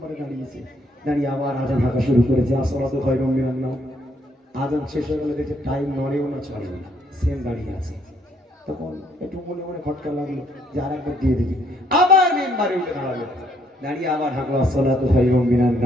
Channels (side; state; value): both; normal; correlation 0.69